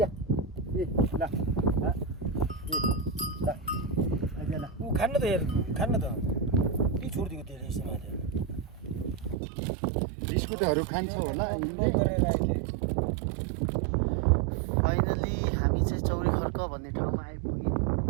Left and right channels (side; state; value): left; drops out; at 9.3 s